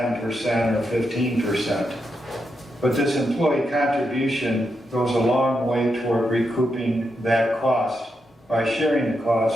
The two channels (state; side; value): normal; both; correlation 0.84